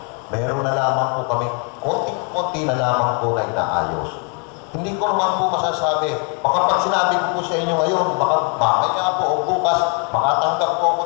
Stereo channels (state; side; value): quieter; right; 36.2 dB